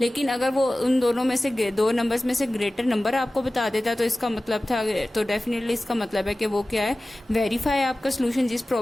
लेकिन अगर वो उन दोनों में से 2 नंबर्स में से ग्रेटर नंबर आपको बता देता तो इसका मतलब था, तो डेफिनेटली इसका मतलब है कि वो क्या है, वेरीफाई आपका सोल्यूशन जिस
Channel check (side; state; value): both; normal; correlation 0.97